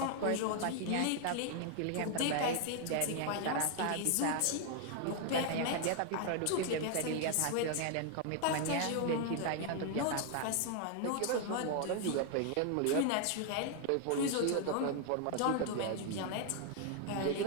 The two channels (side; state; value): both; different; correlation 0.00